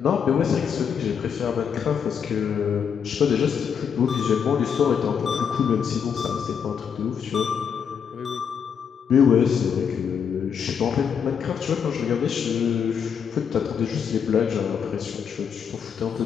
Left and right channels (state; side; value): quieter; right; 7.3 dB